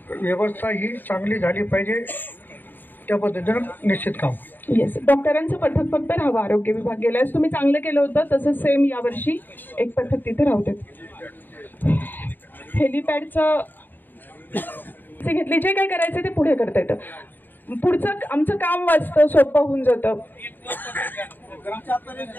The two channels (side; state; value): right; late; 0.091 ms